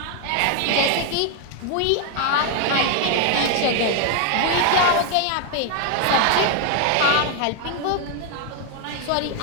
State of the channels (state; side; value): different; both; correlation 0.01